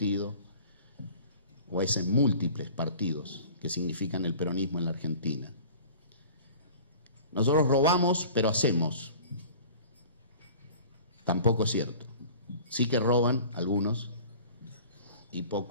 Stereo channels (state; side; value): inverted; both; correlation -0.44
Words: o a esos múltiples partidos que significan el peronismo en la Argentina. Nosotros robamos, pero hacemos. Tampoco es cierto. Sí que roban algunos y